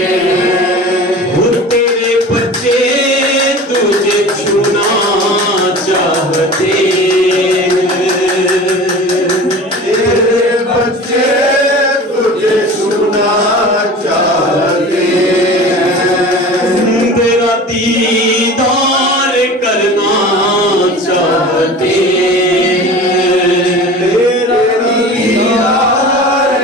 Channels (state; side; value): normal; both; correlation 0.37